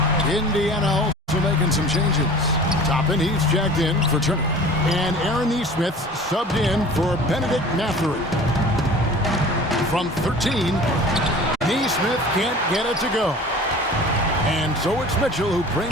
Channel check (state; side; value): normal; both; correlation 0.42